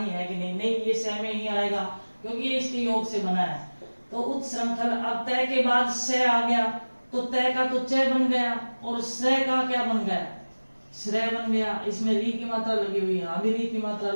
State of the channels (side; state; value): both; inverted; correlation -1.00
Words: है कि नहीं, नहीं ये स में ही आएगा क्योंकि ये इसके योग से बना है। तो उत्श्रंखल। अब तय के बाद स आ गया तो तय का तो च बन गया और स का क्या बन गया, श्रेय बन गया। इसमें री की मात्रा लगी हुई, यहाँ भी री की मात्रा